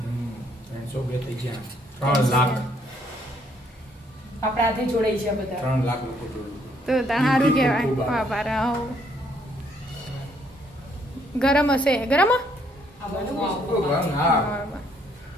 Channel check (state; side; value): normal; both; correlation 0.68